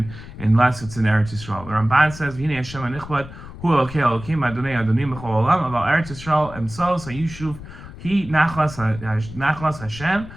unless it's in Eretz Yisrael. The Ramban says, "V'hinei Hashem hanichbad hu Elokei Elokim Adonai Adonim b'chol olam aval Eretz Yisrael emsos hayishuv hi nachlas Hashem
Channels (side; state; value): left; noise; rumble, 14 dB below the sound